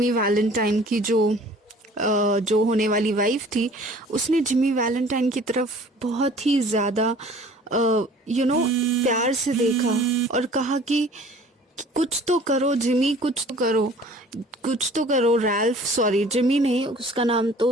वैलेंटाइन की जो होने वाली वाइफ थी, उसने जिमी वैलेंटाइन की तरफ बहुत ही ज़्यादा प्यार से देखा और कहा कि कुछ तो करो जिमी, कुछ तो करो रैल्फ, सॉरी जिमी नहीं, उसका नाम तो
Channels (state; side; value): normal; both; correlation 0.50